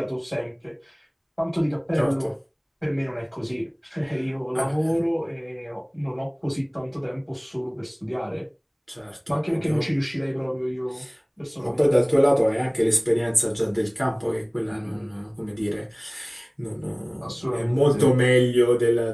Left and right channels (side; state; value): both; identical; correlation 1.00